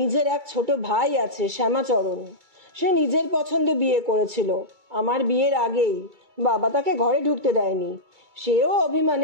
এক ছোট ভাই আছে, শ্যামাচরণ। সে নিজের পছন্দে বিয়ে করেছিল। আমার বিয়ের আগেই বাবা তাকে ঘরে ঢুকতে দেয়নি। সেও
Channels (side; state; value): left; late; 2.2 ms